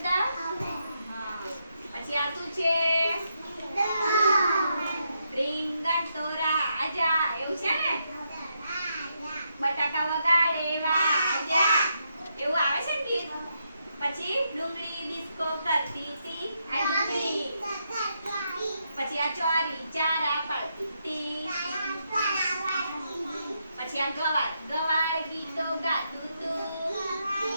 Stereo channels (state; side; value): inverted; both; correlation -0.81